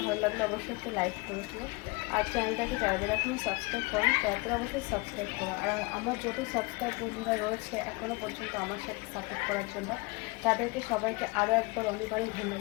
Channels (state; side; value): quieter; right; 26.4 dB